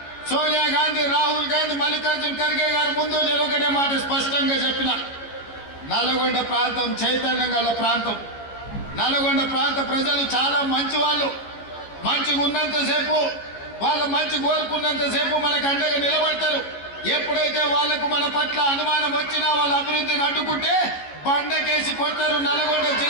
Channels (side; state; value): right; late; 14 ms